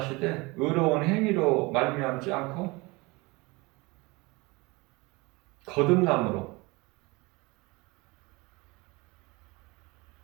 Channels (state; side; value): quieter; left; 24.7 dB